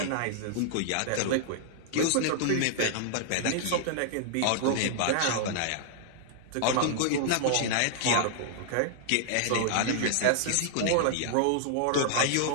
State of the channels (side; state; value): both; different; correlation -0.01